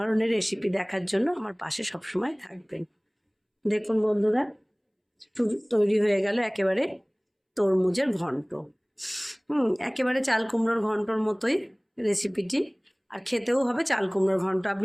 রেসিপি দেখার জন্য আমার পাশে সবসময় থাকবেন। দেখুন বন্ধুরা, তৈরি হয়ে গেল একেবারে তরমুজের ঘন্ট। একেবারে চাল কুমড়োর ঘন্টর মতোই রেসিপিটি, আর খেতেও হবে চাল কুমড়োর ঘন্ট।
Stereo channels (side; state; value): both; identical; correlation 1.00